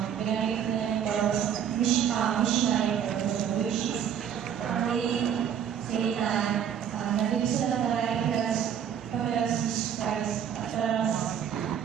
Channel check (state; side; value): quieter; left; 8.7 dB